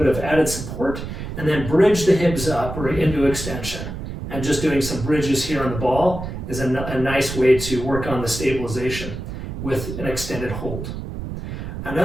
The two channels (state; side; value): noise; right; rumble, 7 dB below the sound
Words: of added support, and then bridge the hips up or into extension. And just doing some bridges here on the ball is a nice way to work on the stabilization with an extended hold.